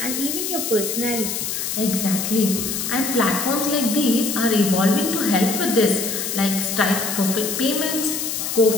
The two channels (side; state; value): left; noise; hiss, 3 dB below the sound